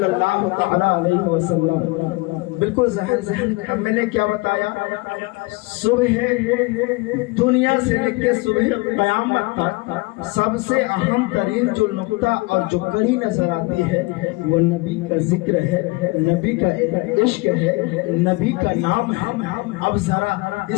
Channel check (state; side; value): quieter; right; 23.9 dB